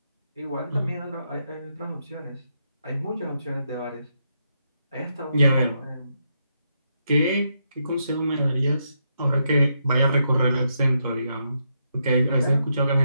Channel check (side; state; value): both; inverted; correlation -0.80